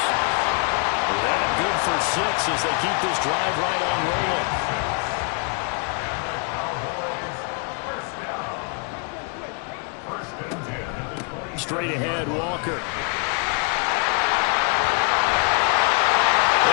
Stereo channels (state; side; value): quieter; right; 37.7 dB